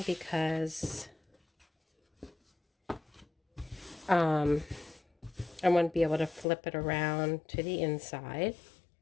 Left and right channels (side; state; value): right; drops out; at 6.5 s